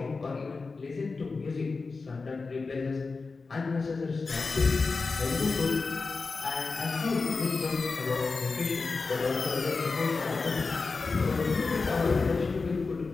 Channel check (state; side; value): quieter; right; 4.2 dB